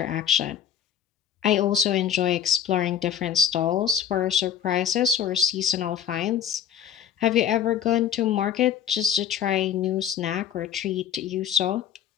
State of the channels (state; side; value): quieter; right; 9.2 dB